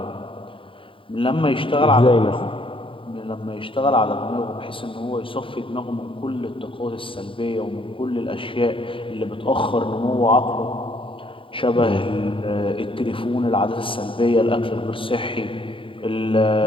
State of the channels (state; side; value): late; right; 0.25 ms